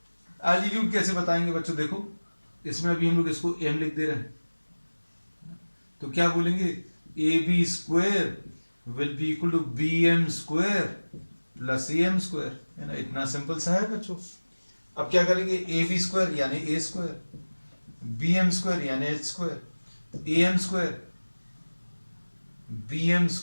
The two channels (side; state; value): both; inverted; correlation -1.00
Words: एल्टीट्यूड कैसे बताएंगे बच्चों? देखो, इसमें अभी हम लोग इसको एम लिख दे रहे हैं, तो क्या बोलेंगे? A B square will be equal to B M square plus A M square, है ना। इतना सिंपल सा है बच्चों। अब क्या करेंगे? ए बी स्क्वायर यानी A square, B M square यानी H square, A M square B M